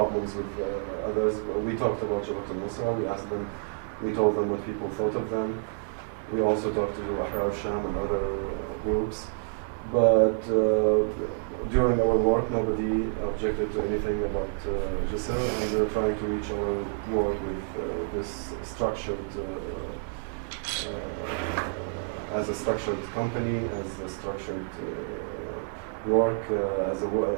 with others. We talked about Jabhat al-Nusra. We told them what people thought of them. We also talked to Ahrar al-Sham and other groups. But during our work, nobody objected to anything about Jisr, and we're trying to reach our work with this structured, as a structured company, as a structured work, as a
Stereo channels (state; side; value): silent; left; digital silence